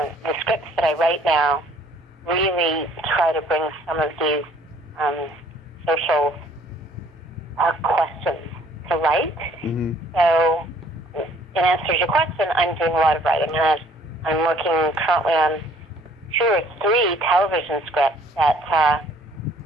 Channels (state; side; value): normal; both; correlation 0.58